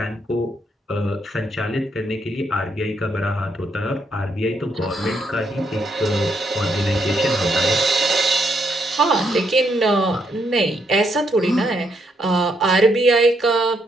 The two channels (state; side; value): normal; both; correlation 0.76